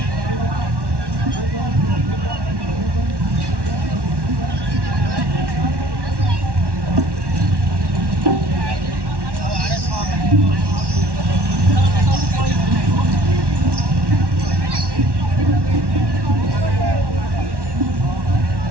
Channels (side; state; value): left; late; 1.1 ms